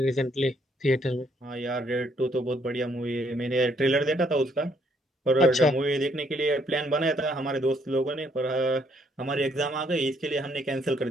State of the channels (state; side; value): normal; both; correlation 0.69